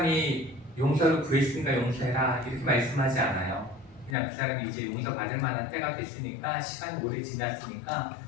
용서를 구했으니까 용서해라 이렇게 말씀하지 않아요. 그냥 그 사람이 이제 용서받을 만한 때가 됐으니까, 시간이 오래 지났으니까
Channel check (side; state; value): right; drops out; at 4.2 s